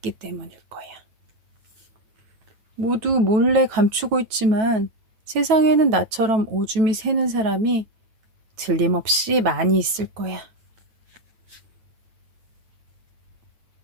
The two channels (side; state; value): left; late; 9.3 ms